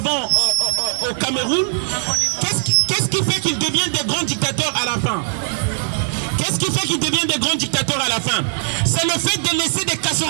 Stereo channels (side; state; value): left; silent; 66 dB below the other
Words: au Cameroun. Qu'est-ce qui fait qu'ils deviennent des grands dictateurs à la fin? Qu'est-ce qui fait qu'ils deviennent des grands dictateurs à la fin? C'est le fait de laisser des